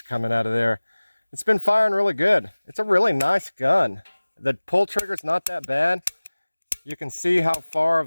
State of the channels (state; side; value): inverted; both; correlation -1.00